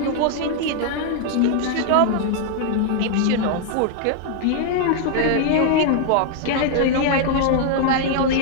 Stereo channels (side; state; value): both; different; correlation 0.00